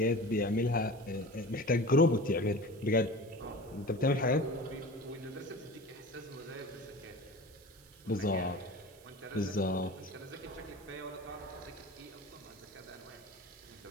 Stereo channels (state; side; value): noise; right; hiss, 25 dB below the sound